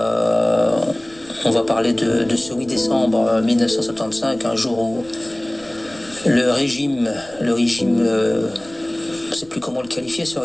va parler de ce 8 décembre 1975, un jour où le régime, je ne sais plus comment le qualifier, ce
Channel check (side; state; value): right; noise; rumble, 24 dB below the sound